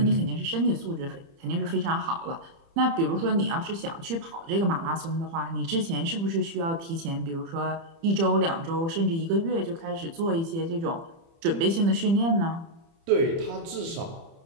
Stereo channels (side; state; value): left; late; 30 ms